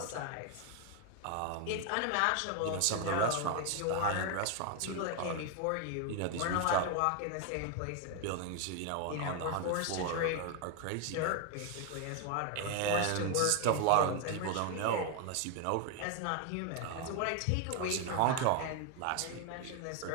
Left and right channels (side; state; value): both; different; correlation 0.01